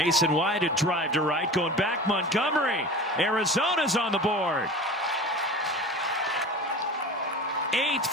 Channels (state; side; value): normal; both; correlation 0.35